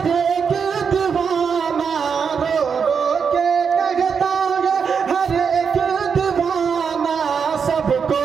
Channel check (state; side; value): quieter; left; 6.3 dB